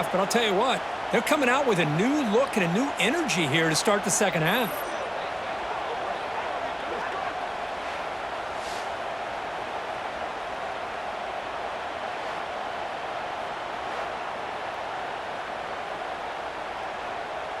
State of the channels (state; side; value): identical; both; correlation 1.00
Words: but I'll tell you what, they're coming out with a new look and a new energy here to start the second half.